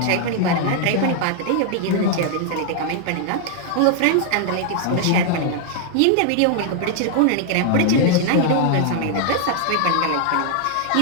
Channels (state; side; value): different; both; correlation 0.00